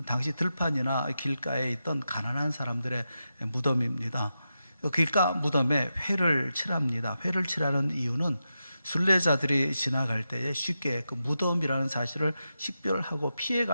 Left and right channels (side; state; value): both; inverted; correlation -0.89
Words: 당시 들판이나 길가에 있던 가난한 사람들의 무덤입니다. 길가 무덤에 회를 칠합니다. 회를 칠하는 이유는 순례자들이 지나갈 때에 쉽게 그 무덤이라는 사실을 식별하고